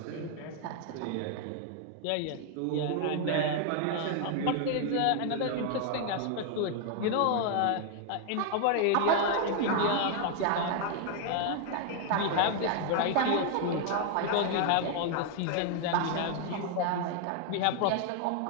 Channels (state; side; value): different; both; correlation 0.00